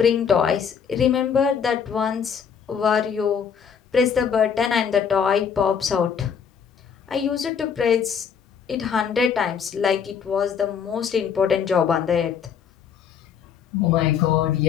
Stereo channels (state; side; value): quieter; right; 7.2 dB